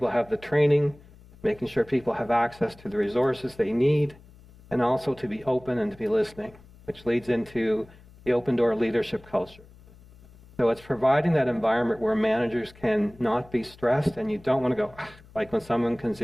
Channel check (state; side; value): noise; left; hum, 24 dB below the sound